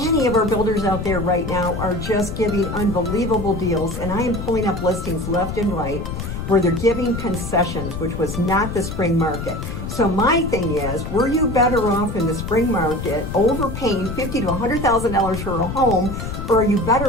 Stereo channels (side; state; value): left; noise; rumble, 6 dB below the sound